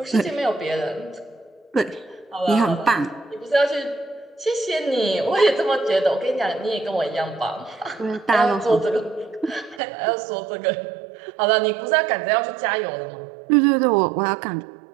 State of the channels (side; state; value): left; drops out; at 9.8 s